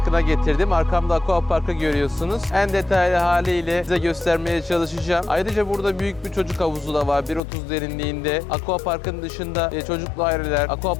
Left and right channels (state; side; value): drops out; right; at 7.4 s